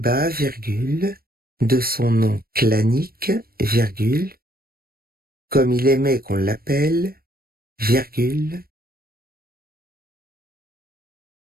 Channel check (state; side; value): late; left; 0.44 ms